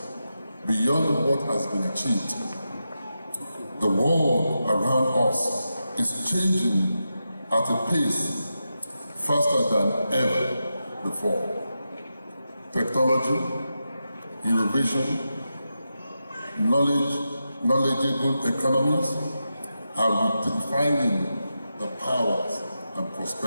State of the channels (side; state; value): both; inverted; correlation -0.89